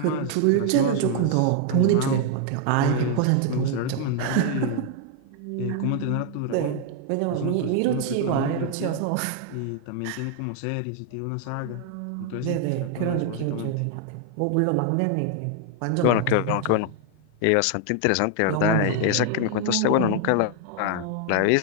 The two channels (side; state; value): both; different; correlation 0.00